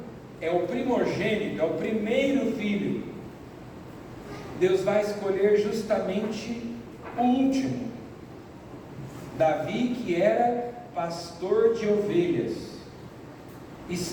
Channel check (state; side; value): identical; both; correlation 1.00